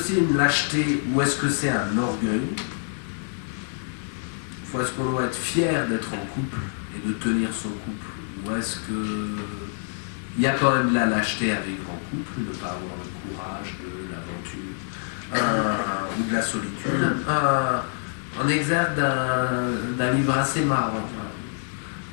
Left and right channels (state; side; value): silent; right; digital silence